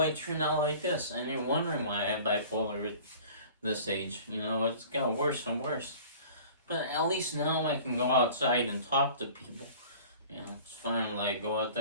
turned out like this. And you're wondering why I have bipolar at this age. It's got worse and worse. But at least now I can go outside and talk to people. It's finally go out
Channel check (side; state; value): both; inverted; correlation -0.44